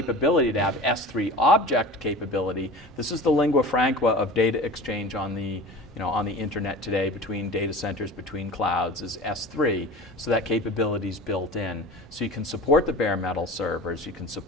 to have S3 object capability. This is the lingua franca of data exchange on the on the internet today between data centers, between clouds, is S3. So that capability is built in. So you can support the bare metal servers, you can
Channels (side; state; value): both; normal; correlation 0.36